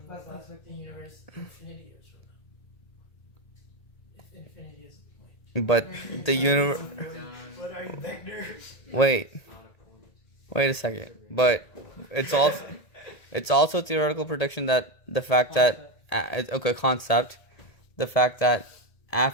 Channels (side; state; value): right; late; 1.8 ms